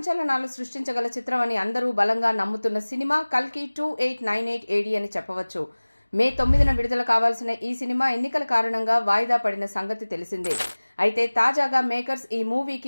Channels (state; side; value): inverted; both; correlation -1.00